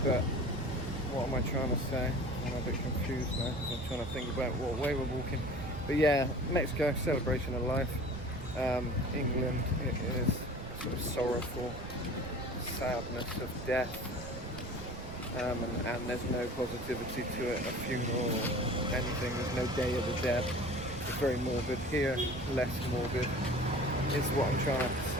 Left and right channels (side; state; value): right; noise; rumble, 12 dB below the sound